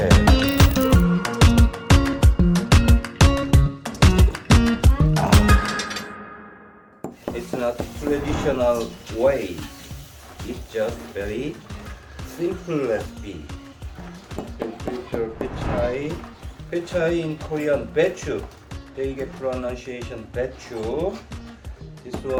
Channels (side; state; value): both; identical; correlation 1.00